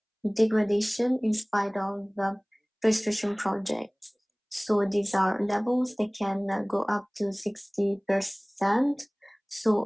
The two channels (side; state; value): both; identical; correlation 1.00